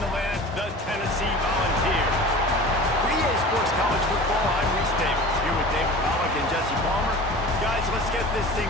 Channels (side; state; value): both; normal; correlation 0.38